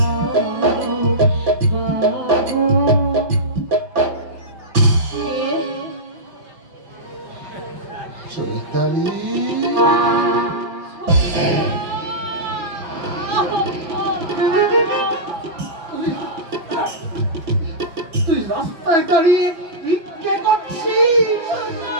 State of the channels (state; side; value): late; left; 6.0 ms